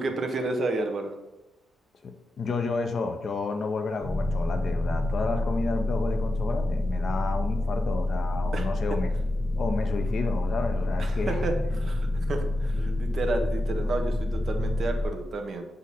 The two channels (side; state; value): both; normal; correlation 0.89